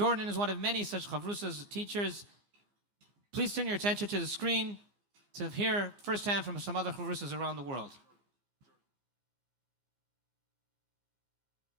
is one of many such chavrusas, teachers. Please turn your attention to the screen to hear firsthand from some other chavrusas around the world.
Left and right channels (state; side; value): late; left; 15 ms